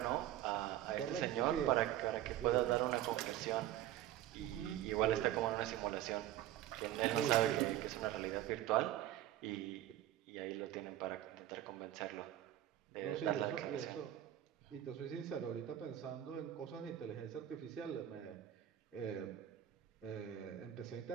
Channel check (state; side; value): quieter; left; 12.8 dB